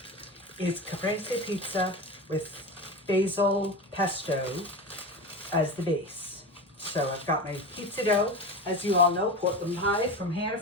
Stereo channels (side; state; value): both; normal; correlation 0.25